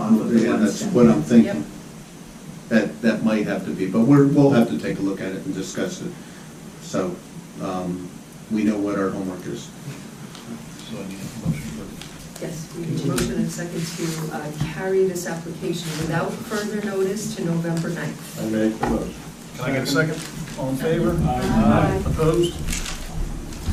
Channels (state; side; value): identical; both; correlation 1.00